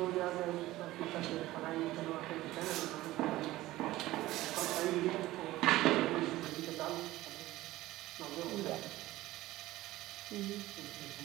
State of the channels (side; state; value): left; quieter; 16.8 dB